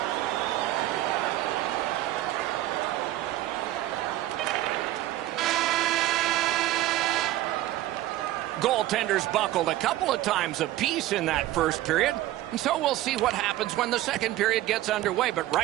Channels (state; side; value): quieter; left; 14.9 dB